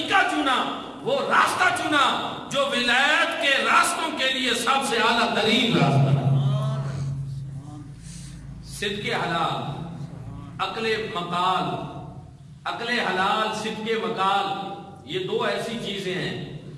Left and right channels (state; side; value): identical; both; correlation 1.00